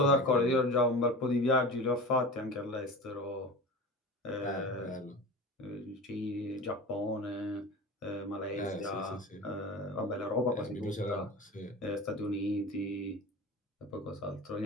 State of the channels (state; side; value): normal; both; correlation 0.32